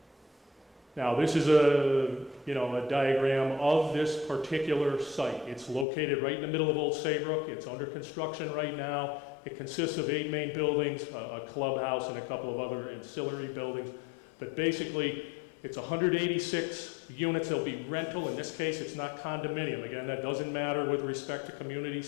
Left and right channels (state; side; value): drops out; right; at 5.9 s